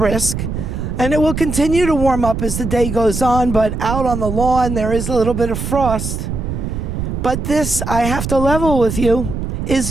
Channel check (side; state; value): right; noise; rumble, 4 dB below the sound